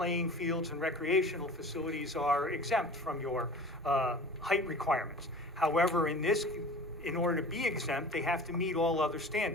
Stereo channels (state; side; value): normal; both; correlation 0.39